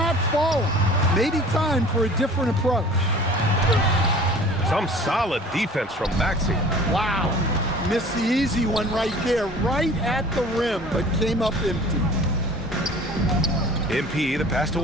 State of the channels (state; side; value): normal; both; correlation 0.45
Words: falling. Maybe time for a different approach. Some solid defense from Maxey. Wow. Missed the easy one right there, right at the rim, but came up empty. MP, the pass to